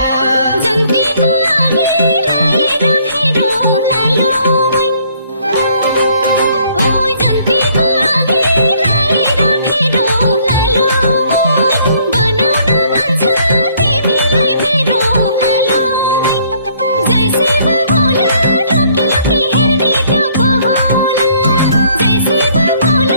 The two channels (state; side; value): inverted; both; correlation -0.63